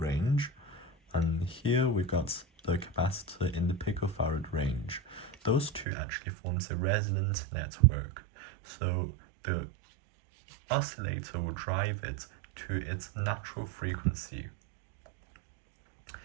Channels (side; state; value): left; drops out; at 5.9 s